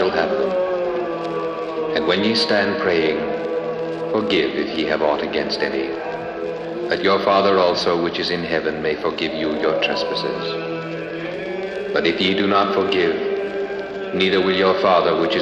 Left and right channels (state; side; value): identical; both; correlation 1.00